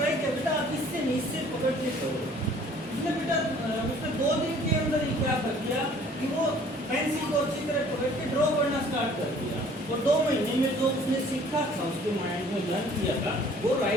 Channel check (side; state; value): both; normal; correlation 0.54